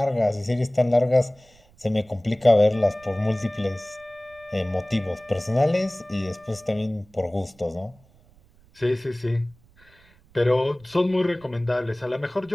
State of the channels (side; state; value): right; noise; rumble, 29 dB below the sound